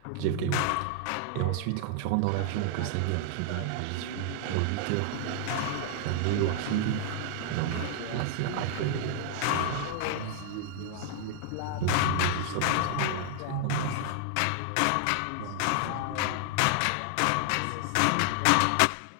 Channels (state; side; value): different; both; correlation 0.00